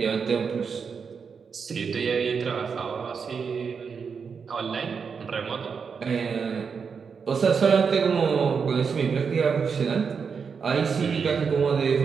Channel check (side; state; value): left; quieter; 5.9 dB